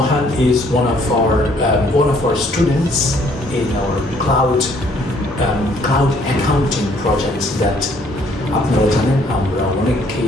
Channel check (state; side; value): normal; both; correlation 0.63